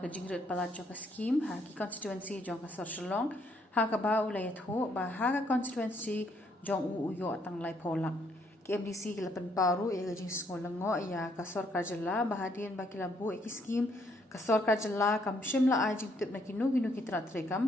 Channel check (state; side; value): normal; both; correlation 0.70